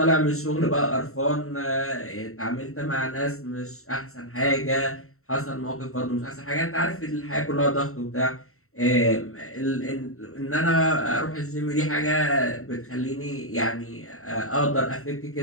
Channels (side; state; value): right; late; 0.63 ms